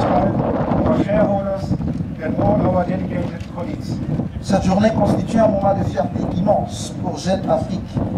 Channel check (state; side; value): identical; both; correlation 1.00